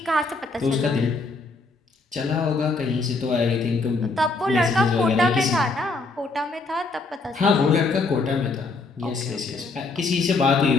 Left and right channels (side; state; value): right; quieter; 3.7 dB